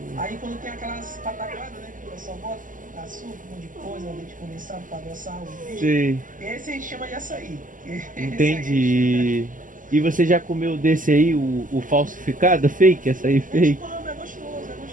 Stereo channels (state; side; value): late; left; 0.38 ms